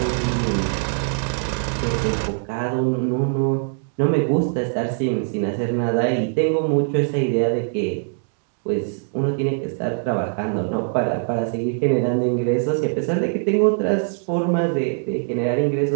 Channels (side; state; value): left; silent; digital silence